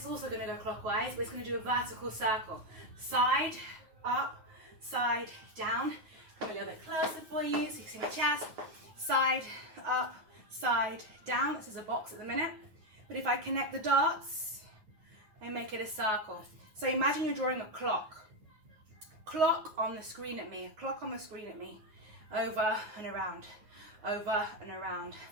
also going to go clockwise, but it's going to do a vertical circle. Side, up, side, down. Come a little bit closer for you so you can see my chest. Side, up, side, down. This is a box at the minute. But if I connect the dots, I make it a circle. So imagine you're drawing a clock. Clock on the screen at me. A clock on the screen at me. Over and around. Over and around.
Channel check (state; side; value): late; left; 9.4 ms